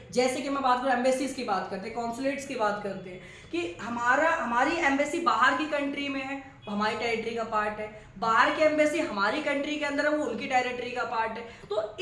जैसे कि मैं बात करूँ एम्बेसीज की बात करते हैं, कॉन्सुलेट्स की बात करते हैं कि हमारी एम्बेसी बाहर की कंट्री में है, हमारी टेरिटरी का पार्ट है, बाहर की एम्बेसी हमारी कंट्री के अंदर है, वो उनकी टेरिटरी का पार्ट है। तो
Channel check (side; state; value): both; identical; correlation 1.00